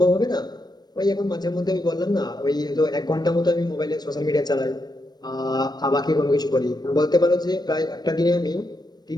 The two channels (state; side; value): late; right; 0.19 ms